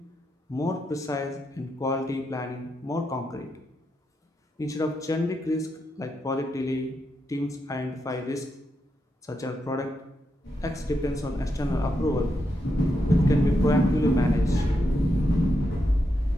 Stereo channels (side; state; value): both; normal; correlation 0.84